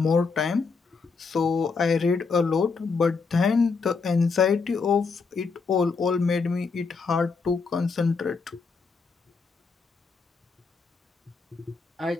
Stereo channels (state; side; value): quieter; right; 4.7 dB